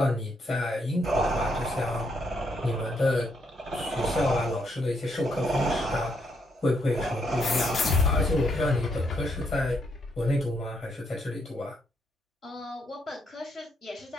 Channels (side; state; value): both; normal; correlation 0.76